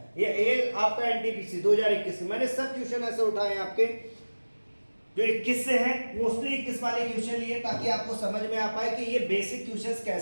ये आपका एनटीपीसी 2021 मैंने सब क्वेश्चन ऐसे उठाए हैं आपके जो 21 से हैं, मोस्टली 21 वाले क्वेश्चन लिए ताकि आपको समझ में आ पाए कि ये बेसिक क्वेश्चंस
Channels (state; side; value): inverted; both; correlation -1.00